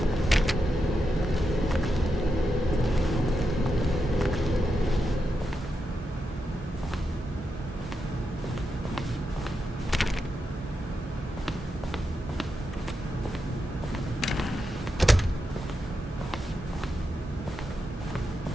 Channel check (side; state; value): both; normal; correlation 0.86